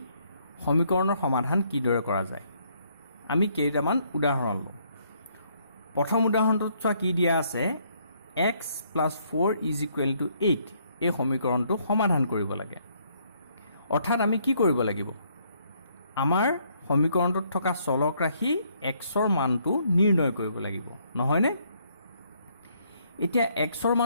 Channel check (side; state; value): both; inverted; correlation -0.69